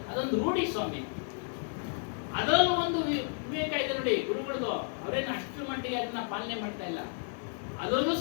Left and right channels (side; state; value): right; silent; 56 dB below the other